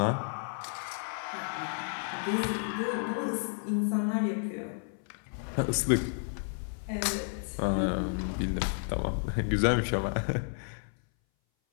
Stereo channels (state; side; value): silent; right; 57 dB below the other